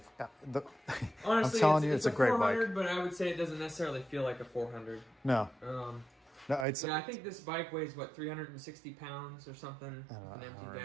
Honestly, telling you, it's a great 400, bike. but I would say it doesn't necessarily feel like a 400. No. No, I think this bike weighs, what, 360 pounds or something? An empty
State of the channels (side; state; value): left; drops out; at 6.7 s